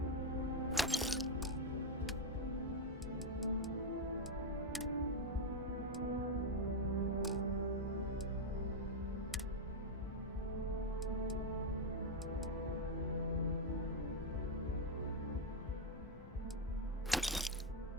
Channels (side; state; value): both; normal; correlation 0.02